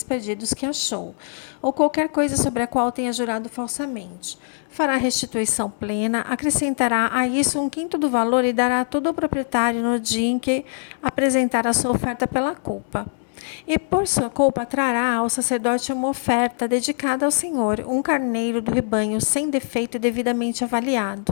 perdidos que achou, ou qualquer coisa sobre a qual tenha jurado falsamente. Fará restituição plena, acrescentará a isso 1/5 do valor e dará tudo ao proprietário no dia em que apresentar a sua oferta pela culpa. E por sua culpa trará ao sacerdote uma oferta dedicada ao Senhor, um carneiro do rebanho sem defeito e devidamente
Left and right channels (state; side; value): silent; right; 64 dB below the other